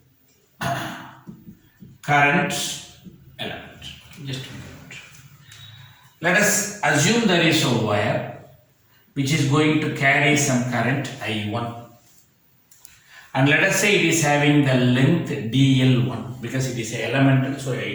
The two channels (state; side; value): identical; both; correlation 1.00